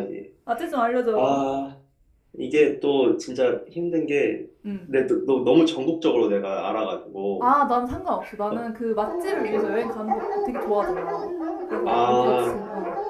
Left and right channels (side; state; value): both; identical; correlation 1.00